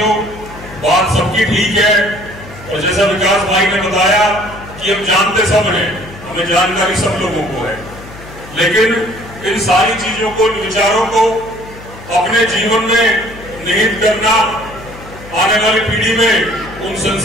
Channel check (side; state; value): left; noise; hum, 17 dB below the sound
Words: बात सबकी ठीक है और जैसा विकास भाई ने बताया कि हम जानते सब हैं, हमें जानकारी सब लोगों को है, लेकिन इन सारी चीजों को, विचारों को अपने जीवन में निहित करना, आने वाली पीढ़ी में उन